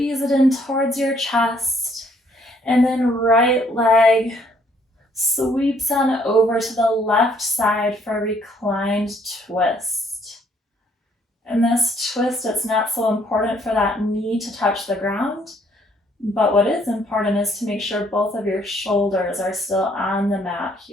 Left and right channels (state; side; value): normal; both; correlation 0.66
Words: it in towards your chest, and then right leg sweeps on over to the left side for a reclined twist. In this twist, it's not so important for that knee to touch the ground, but what is important is to make sure both of your shoulders are still on the mat